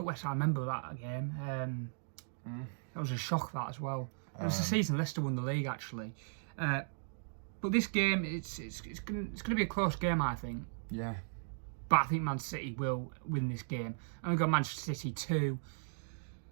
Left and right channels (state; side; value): silent; left; digital silence